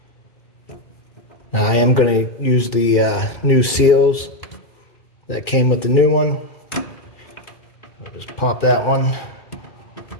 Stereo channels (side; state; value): right; late; 2.3 ms